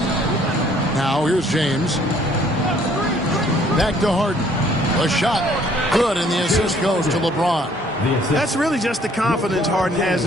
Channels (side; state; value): both; normal; correlation 0.61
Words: Now here's James. Back to Harden. A shot. Good, and the assist goes to LeBron. That's really just the confidence Harden has